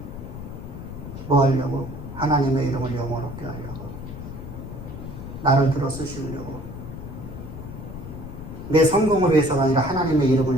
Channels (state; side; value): noise; left; rumble, 10 dB below the sound